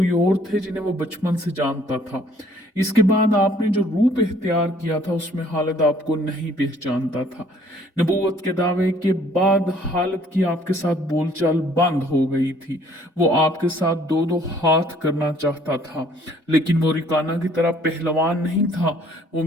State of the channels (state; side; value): normal; both; correlation 0.60